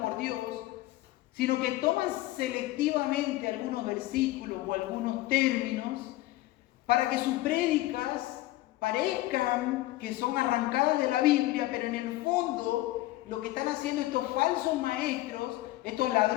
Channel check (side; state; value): right; quieter; 17.2 dB